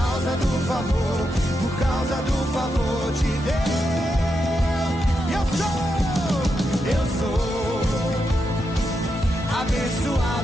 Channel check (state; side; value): normal; both; correlation 0.85